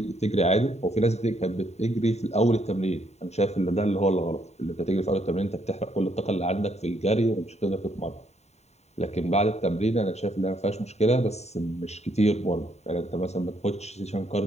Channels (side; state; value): right; late; 0.32 ms